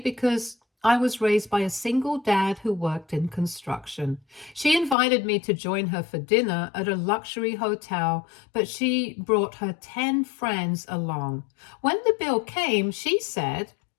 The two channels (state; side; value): drops out; right; at 5.0 s